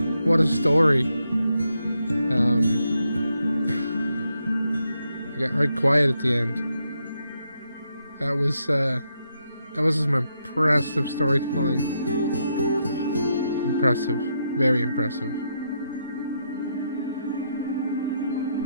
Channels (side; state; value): both; inverted; correlation -0.80